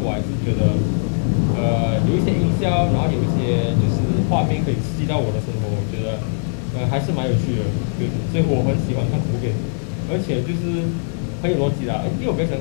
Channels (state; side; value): silent; right; digital silence